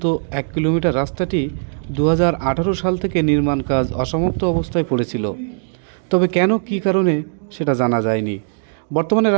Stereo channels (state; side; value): silent; left; digital silence